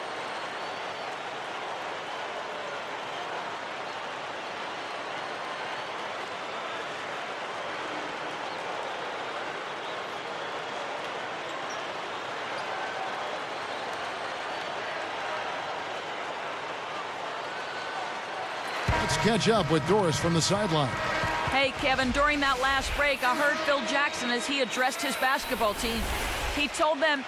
Let's catch up with Doris from the sideline. Hey, Kevin, during that last break, I heard Phil Jackson as he addressed his basketball team. He told them,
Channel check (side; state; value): both; identical; correlation 1.00